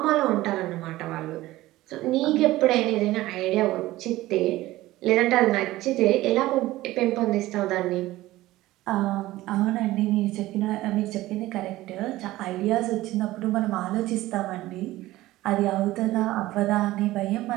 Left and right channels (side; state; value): left; quieter; 17.0 dB